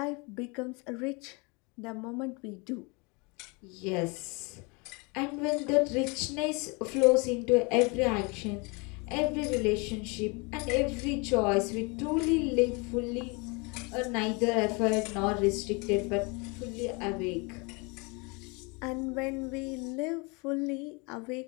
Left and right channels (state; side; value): quieter; right; 29.7 dB